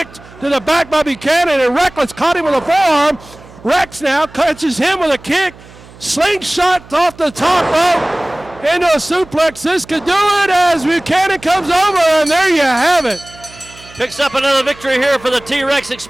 to the back by Buchanan, and Reckless caught him with a forearm. Rex now catches him with a kick. Slingshot off the top rope into a suplex. This could do it as Buchanan comes over, and there you have it. Picks up another victory here for the T-Rex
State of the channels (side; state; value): right; noise; hum, 22 dB below the sound